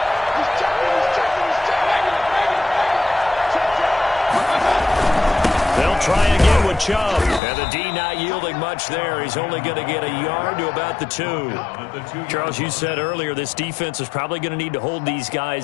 Try again with Chubb. And the D not yielding much there. He's only going to get a yard to about the 2. Charles, you said earlier this defense is probably going to need to hold these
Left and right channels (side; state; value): right; drops out; at 7.4 s